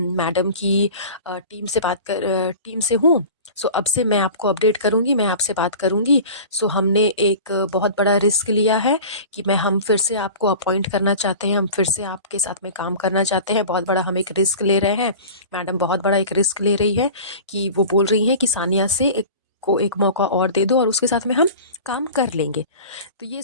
की टीम से हूँ, सो अब से मैं आपको अपडेट करूँगी, मैं आपसे बात करूँगी। सो हमने एक बहुत बड़ा रिस्क लिया है कि हम फिर से आपको अपॉइंट करना चाहते हैं, हम फिर से आपके साथ में काम करना चाहते हैं, बहुत बड़ा हम एक रिस्क ले रहे हैं। मैडम बहुत बड़ा एक रिस्क ले रही है कि वो बोल रही हैं कि सानिया से एक मौका और दे दो और उसके साथ में हम काम कर लेंगे। तो ये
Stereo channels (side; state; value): both; inverted; correlation -0.38